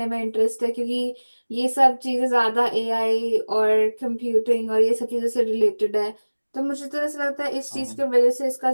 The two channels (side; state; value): both; inverted; correlation -1.00